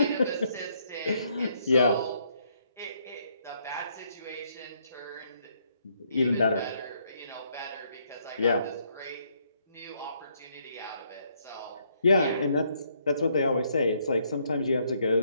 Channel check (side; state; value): both; inverted; correlation -0.71